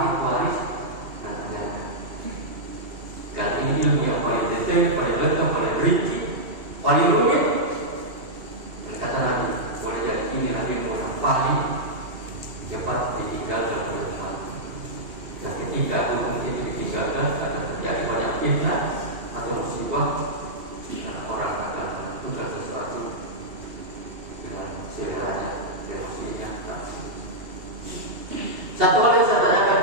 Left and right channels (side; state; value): left; late; 2.8 ms